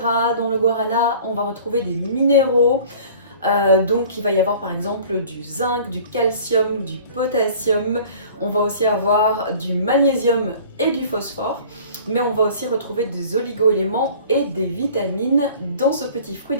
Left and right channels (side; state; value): both; inverted; correlation -0.47